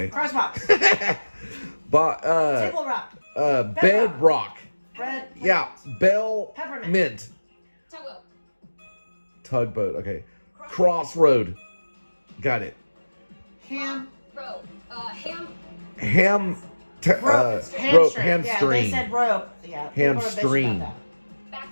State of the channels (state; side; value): inverted; both; correlation -1.00